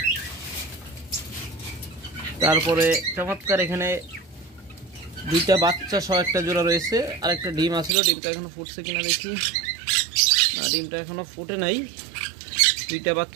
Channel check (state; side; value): drops out; left; at 8.0 s